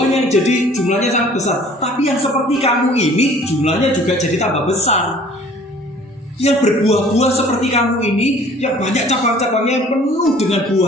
yang jadi jumlahnya sangat besar, tapi yang seperti kamu ini jumlahnya juga jadi tambah besar. Yang berbuah-buah seperti kamu ini, yang banyak cabang-cabangnya yang penuh dengan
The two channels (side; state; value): both; normal; correlation 0.51